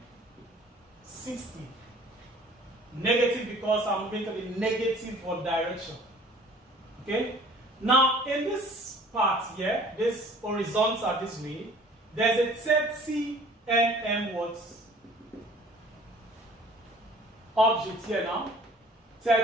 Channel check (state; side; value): normal; both; correlation 0.51